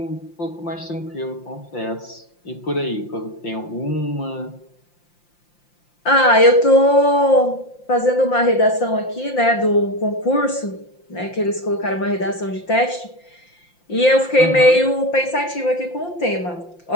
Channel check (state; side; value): late; right; 5.8 ms